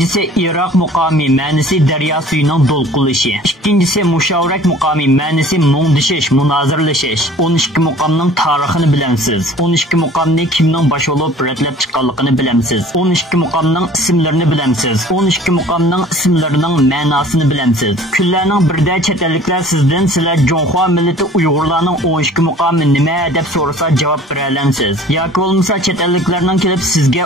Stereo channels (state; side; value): normal; both; correlation 0.49